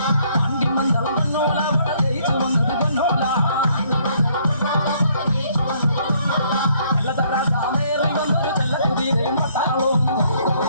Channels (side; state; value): both; inverted; correlation -0.66